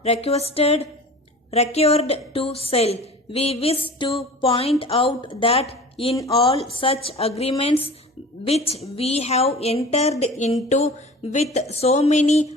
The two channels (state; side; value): normal; both; correlation 0.39